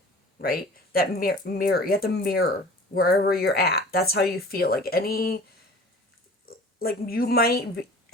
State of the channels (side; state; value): both; normal; correlation 0.43